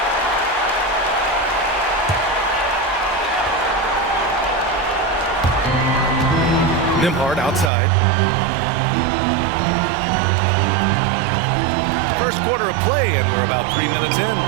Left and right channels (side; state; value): left; drops out; at 7.7 s